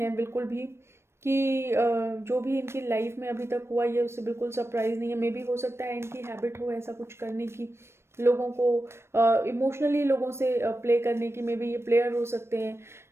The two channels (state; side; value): late; left; 0.12 ms